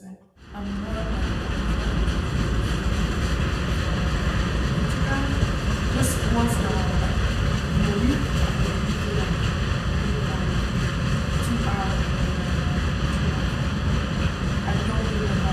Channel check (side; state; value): both; identical; correlation 1.00